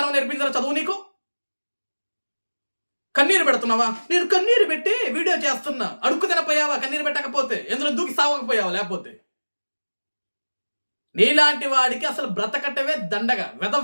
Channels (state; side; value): inverted; both; correlation -1.00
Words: నేర్పించారా చదువు నీకు? కన్నీరు పెడుతున్నావా? నేను కన్నీరు పెట్టి వీడియో చేస్తున్నా, అడుక్కు తినపోయావా? కన్నీరు పెట్టకపోతే ఎందులో దూకి సావకపోయావా? లేకపోతే నీలాంటి వాడికి అసలు బ్రతకట్టవే దండగా,